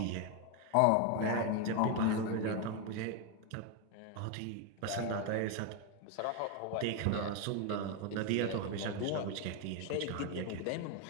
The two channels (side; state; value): both; different; correlation 0.02